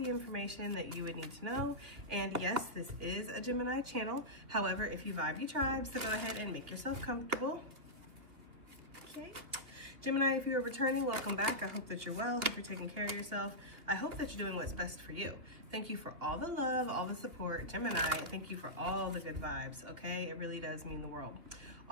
information that you would need to know. And yes, this is a Gemini channel. However, if you vibe, you tribe, so go ahead and make yourself comfortable. Okay. Gemini, if you are returning, welcome back. I hope that you're well. Hope you're taking care of yourself. I hope that you're doing what's best for you. Thank you for all the love, all the support. Gemini, thank you for all the good vibes, okay? It really does mean the world.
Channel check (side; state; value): left; late; 2.5 ms